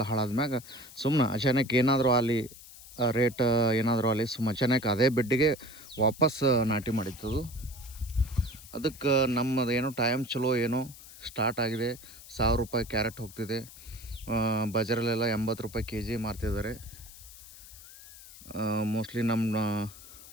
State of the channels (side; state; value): left; noise; hiss, 18 dB below the sound